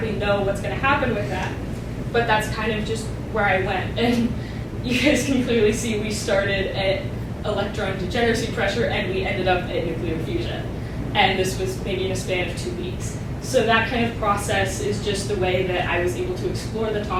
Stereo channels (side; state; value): both; identical; correlation 1.00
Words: know what's going to happen with that. but that's kind of just where I went. And you guys can clearly see we started at electron degeneracy pressure and we ended up at nuclear fusion. And this was maybe in a span of 2 weeks. So that kind of process is just the way that I was able to explore the